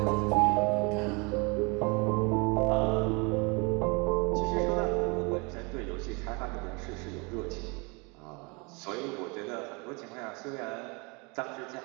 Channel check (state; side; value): quieter; left; 30.1 dB